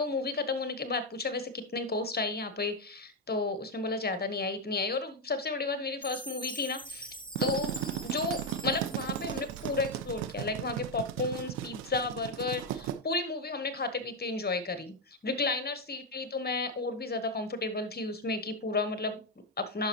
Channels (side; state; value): both; normal; correlation 0.05